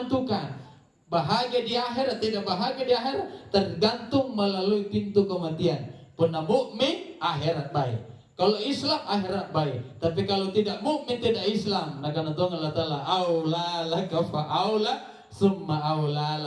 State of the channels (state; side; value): identical; both; correlation 1.00